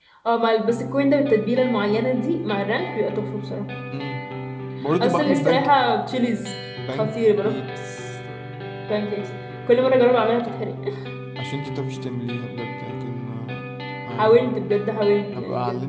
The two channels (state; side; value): identical; both; correlation 1.00